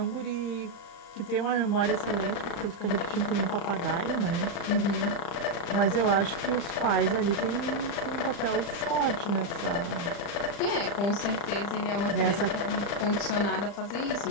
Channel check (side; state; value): right; late; 35 ms